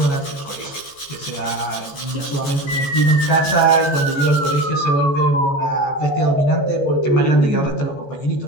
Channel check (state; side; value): late; right; 14 ms